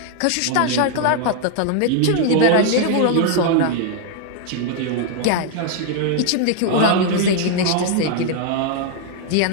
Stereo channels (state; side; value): different; both; correlation 0.00